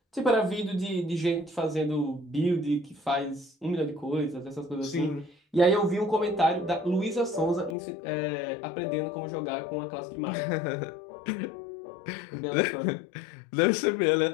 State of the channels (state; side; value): drops out; right; at 7.8 s